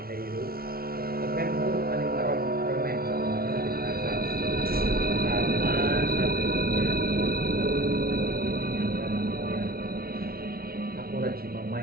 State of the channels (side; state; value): left; late; 0.44 ms